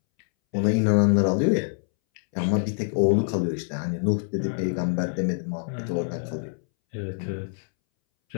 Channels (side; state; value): right; silent; 62 dB below the other